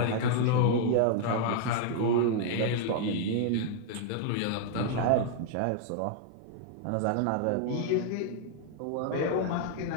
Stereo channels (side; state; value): both; different; correlation 0.00